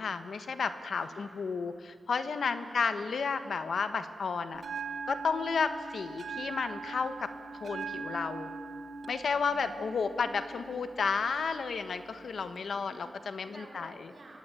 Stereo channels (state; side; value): quieter; right; 4.2 dB